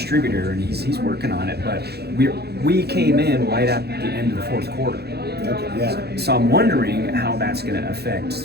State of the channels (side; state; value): left; late; 0.47 ms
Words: and he's working on it. But we came in right at the end of the fourth quarter. Okay. Yeah. So I'm wondering how that's going to